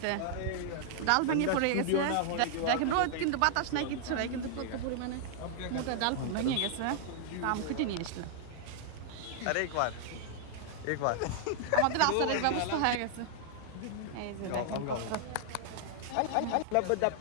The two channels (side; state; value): both; different; correlation -0.01